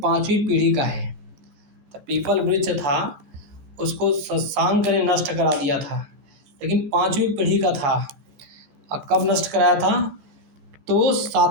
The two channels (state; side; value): late; left; 14 ms